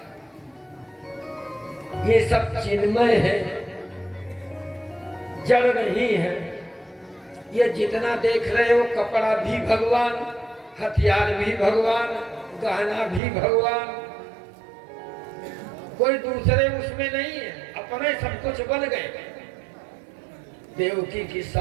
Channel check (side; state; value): left; drops out; at 13.2 s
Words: ये सब चिन्मय है, जड़ नहीं है। ये जितना देख रहे हो, कपड़ा भी भगवान, हथियार भी भगवान, गहना भी भगवान, कोई दूसरे उसमें नहीं है। अपने सब कुछ बन गए, देवकी के